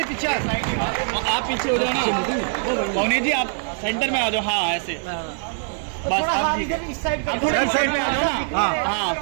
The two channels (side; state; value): left; silent; 64 dB below the other